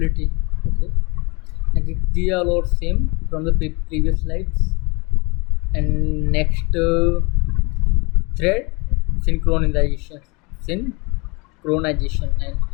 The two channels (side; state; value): right; quieter; 28.0 dB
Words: Okay, and these are all same from the previous slides. And next, thread synchronization, synchronization, and